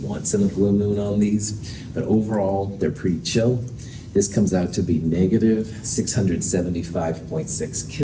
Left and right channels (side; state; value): both; identical; correlation 1.00